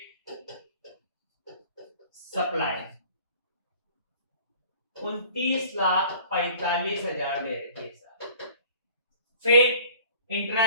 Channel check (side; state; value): both; inverted; correlation -0.50